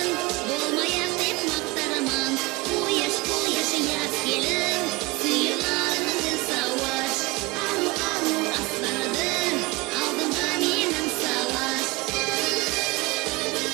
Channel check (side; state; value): left; quieter; 24.1 dB